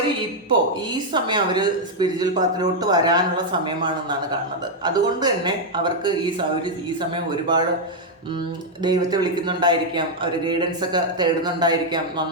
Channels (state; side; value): normal; both; correlation 0.00